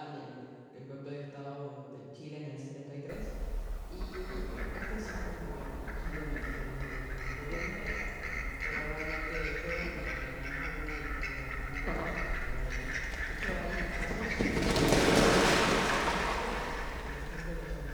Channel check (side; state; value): both; identical; correlation 1.00